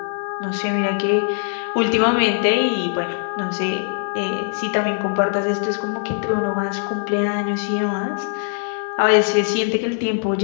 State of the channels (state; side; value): silent; right; digital silence